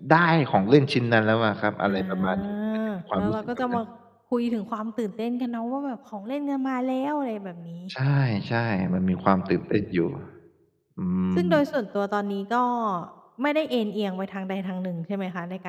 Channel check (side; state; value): both; identical; correlation 1.00